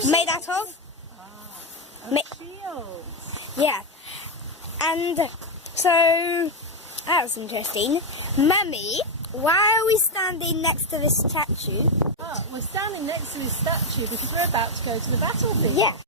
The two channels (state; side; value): normal; both; correlation 0.04